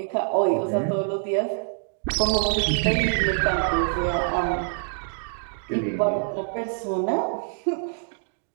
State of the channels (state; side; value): silent; left; digital silence